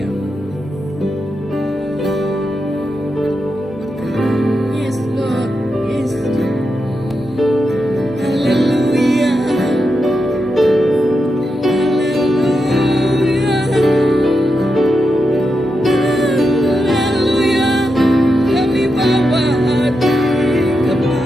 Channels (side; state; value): both; normal; correlation 0.86